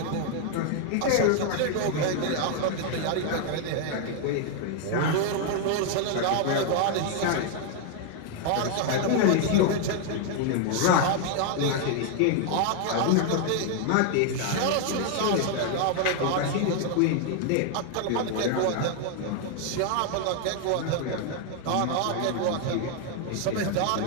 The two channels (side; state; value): both; different; correlation 0.00